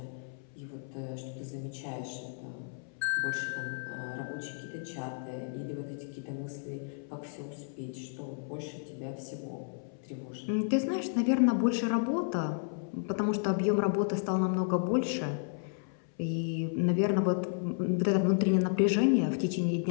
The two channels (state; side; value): silent; right; 56 dB below the other